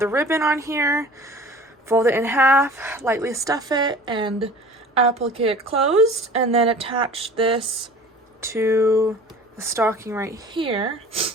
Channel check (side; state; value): both; normal; correlation 0.43